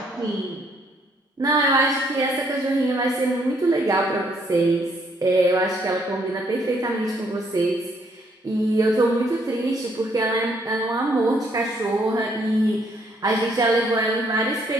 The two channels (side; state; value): both; normal; correlation 0.69